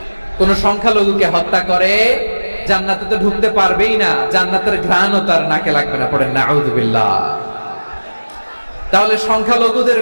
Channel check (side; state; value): both; inverted; correlation -1.00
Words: কোন সংখ্যালঘুকে হত্যা করে, জান্নাতে তো ঢুকতে পারবেই না, জান্নাতের ঘ্রাণও তার নাকে লাগবে না। পড়েন নাউযুবিল্লাহ। তাহলে সংখ্যালঘুদের